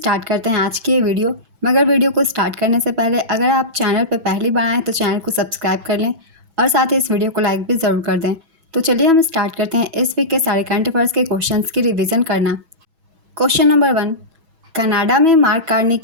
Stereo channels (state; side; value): late; left; 6.1 ms